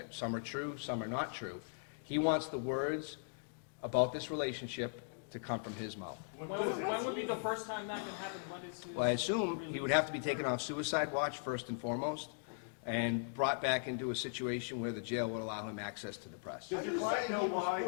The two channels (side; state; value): right; silent; digital silence